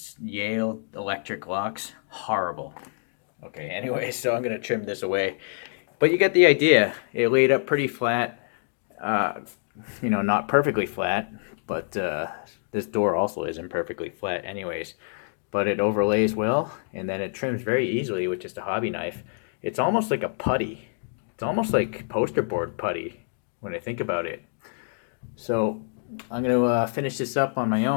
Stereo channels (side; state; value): right; silent; digital silence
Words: Yale electric locks, horrible. Okay, anyway, so I'm gonna trim this away. But you get the idea. It laid up pretty flat. Uh, not perfectly flat, but this door also isn't perfectly flat anyways. But it overlays well, and then it trims very easily with just a hobby knife. It's almost like a putty. It's almost like poster board putty when I think about it. So I'm going to finish this up on my